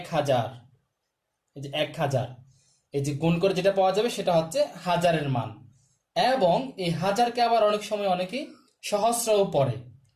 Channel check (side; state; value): both; identical; correlation 1.00